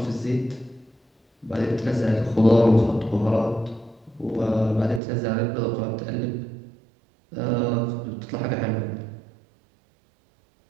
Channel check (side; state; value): left; drops out; at 5.0 s